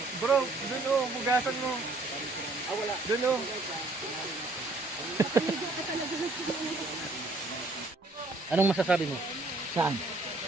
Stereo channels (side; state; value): left; quieter; 3.1 dB